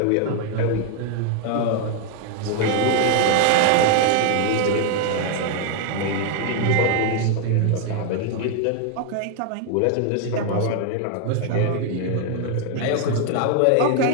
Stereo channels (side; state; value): both; different; correlation 0.00